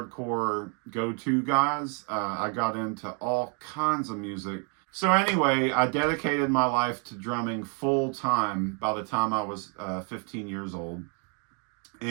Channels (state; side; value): quieter; left; 38.9 dB